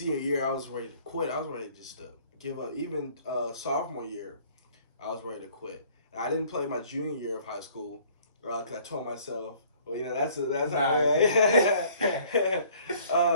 year I was ready to quit, I was ready to just give up. Even sophomore year, I was ready to quit. And I didn't play my junior year of high school. Because I told myself, well, that's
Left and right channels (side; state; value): both; inverted; correlation -0.56